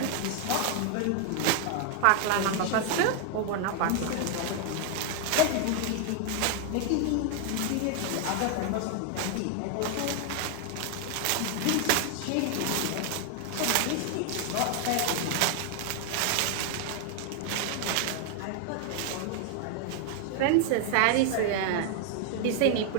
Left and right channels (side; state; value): both; different; correlation 0.00